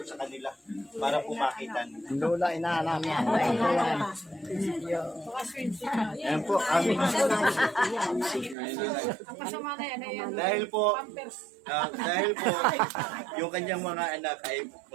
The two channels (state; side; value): drops out; left; at 8.6 s